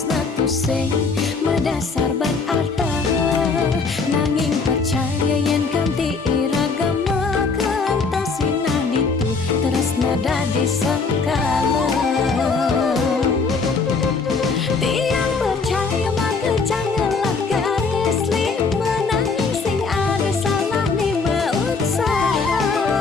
tusing medasar ban arta nanging percaya yen ganti iragama kentasina ditu tresna dadi sengkala. Tiang percaya maka janganlah garis lima nanging sing ada salah lima usaha.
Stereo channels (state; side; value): quieter; right; 4.5 dB